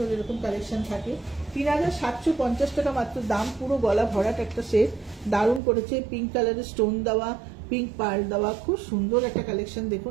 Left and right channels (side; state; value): left; drops out; at 5.6 s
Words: এরকম কালেকশন থাকে। 3750 টাকা মাত্র দাম, পুরো গলা ভরাট একটা সেট, দারুণ করেছে, পিঙ্ক কালারের স্টোন দেওয়া, পিঙ্ক পার্ল দেওয়া, খুব সুন্দর একটা কালেকশন। দেখুন,